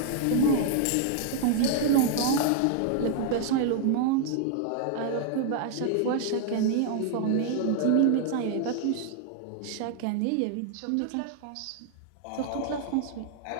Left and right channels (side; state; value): both; different; correlation 0.00